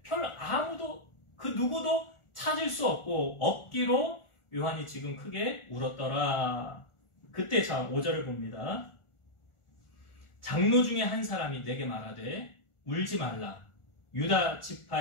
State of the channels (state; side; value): late; right; 1.4 ms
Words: 아무도 그 누구도 찾을 수 없고 없기로 요한이 지금 크게 울었더라. 그때 자 5절을 봅니다. 장로 중에 한 사람이 내게 말하되 울지 말라. 유다